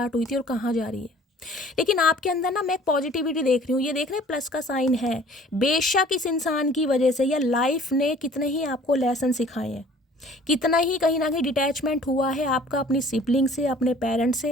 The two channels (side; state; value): both; normal; correlation 0.51